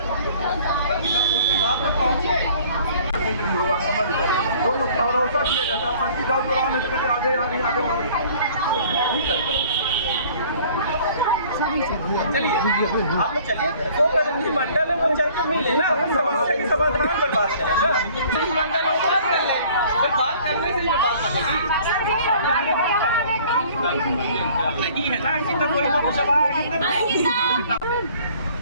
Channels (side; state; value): both; inverted; correlation -0.53